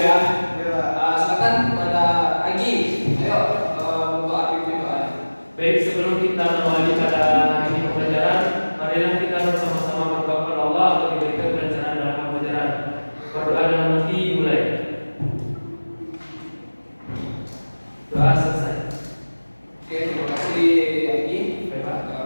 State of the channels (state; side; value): inverted; both; correlation -1.00